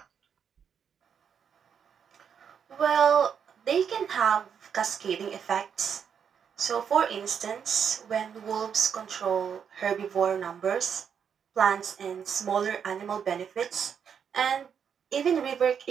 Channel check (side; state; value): left; quieter; 7.5 dB